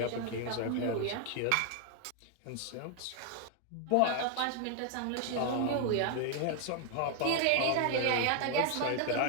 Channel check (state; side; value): different; both; correlation 0.00